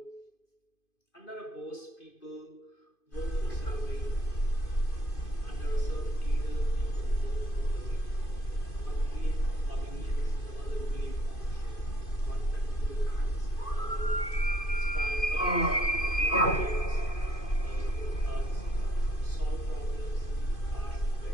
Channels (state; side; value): late; right; 2.5 ms